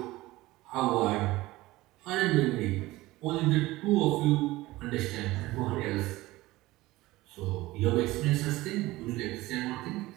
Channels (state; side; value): quieter; left; 18.7 dB